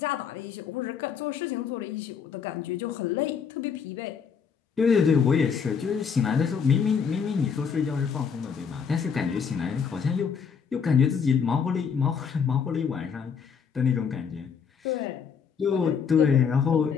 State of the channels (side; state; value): right; quieter; 6.6 dB